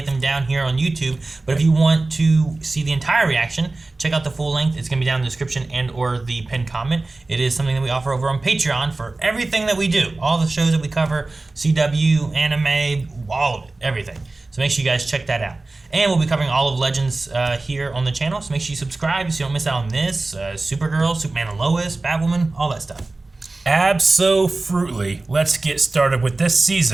them down here on YouTube. But if you want to see the entire reaction, check out the full length. It's going to be down in the description and or the pinned comment. It is something that we offer over on Patreon for everything that we do. All the shows that we cover, CW, anime, all of it, everything. So make sure you guys check that out. And we'll be covering all of Legends here on the channel. So make sure you subscribe so you don't miss out on this. Supergirl, Superman and Lois, Batwoman, all that stuff. Abso-fruitly, let's get started with this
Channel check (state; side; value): quieter; left; 3.2 dB